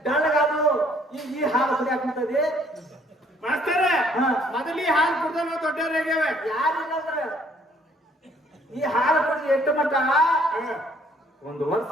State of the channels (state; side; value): normal; both; correlation 0.62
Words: ಡಳ್ಳಗಾದು ಈ ಹಾಲು ಕುಡಿಯಾಕಂತದಿ ಮಾಸ್ತರ ಹಾ. ಮೊದಲಿ ಹಾಲು ಕುಡ್ದ ನಾವು ದೊಡ್ಡವ್ರಾಗ್ಯಾವ ಯಾರಿಲ್ಲಂದ್ರ ಈ ಹಾಲು ಕುಡಿದು ಎಷ್ಟು ಮಟ್ಟ ಒಂದು ವರ್ಷ